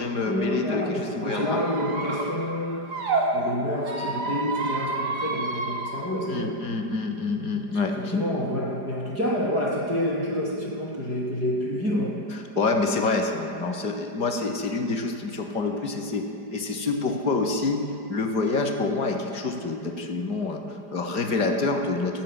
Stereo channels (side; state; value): left; late; 5.0 ms